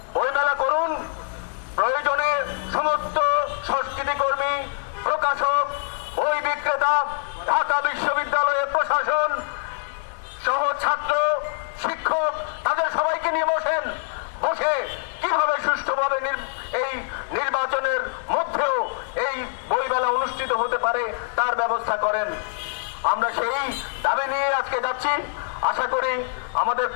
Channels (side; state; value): right; silent; digital silence